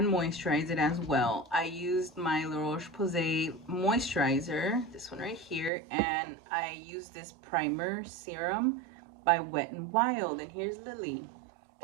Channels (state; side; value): drops out; left; at 5.7 s